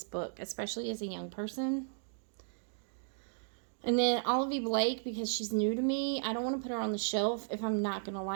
book, especially as a young person. And then Olivia Blake, because she's new to me. I don't want to put her on the shelf if I'm not gonna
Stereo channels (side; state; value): left; silent; digital silence